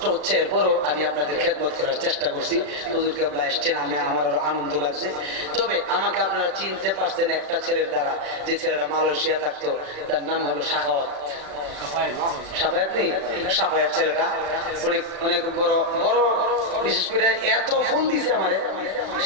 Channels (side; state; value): left; late; 36 ms